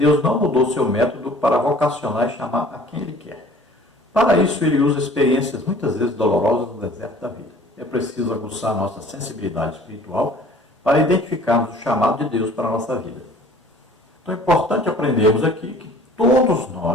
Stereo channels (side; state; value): both; normal; correlation 0.50